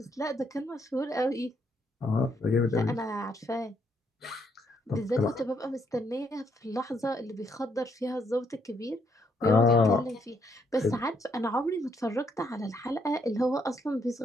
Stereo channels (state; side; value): normal; both; correlation 0.73